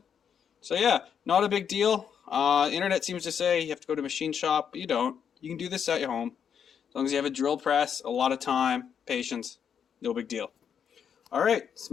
So yeah, not a big deal. Internet seems to say you have to go to a machine shop, but you don't. You can do this at your home. As long as you have a drill press, a lot of time, patience, no big deal. All right,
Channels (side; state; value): right; quieter; 7.8 dB